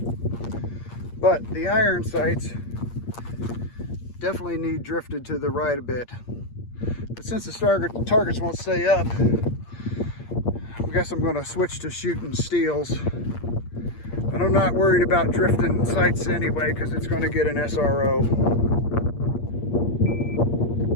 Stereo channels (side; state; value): right; late; 8.6 ms